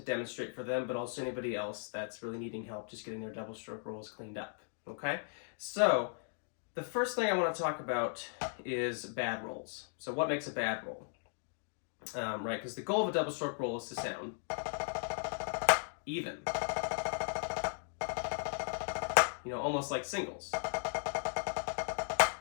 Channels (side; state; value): right; silent; digital silence